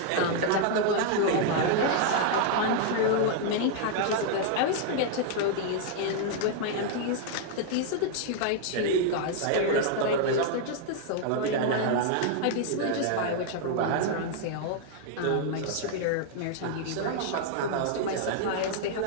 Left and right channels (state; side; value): different; both; correlation 0.00